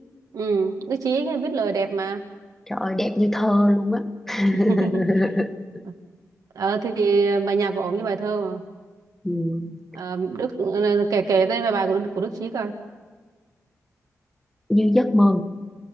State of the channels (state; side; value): normal; both; correlation 0.87